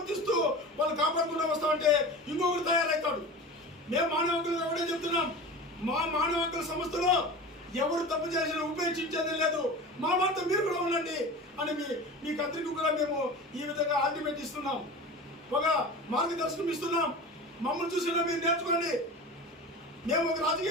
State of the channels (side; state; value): both; normal; correlation 0.33